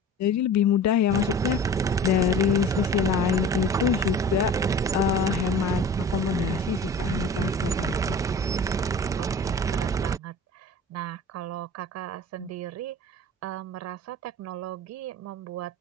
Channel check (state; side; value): normal; both; correlation 0.40